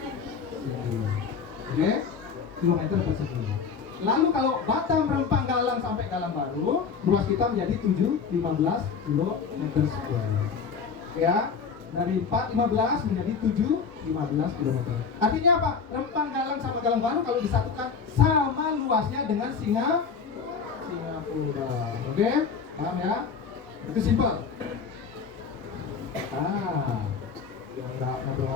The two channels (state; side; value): quieter; right; 5.8 dB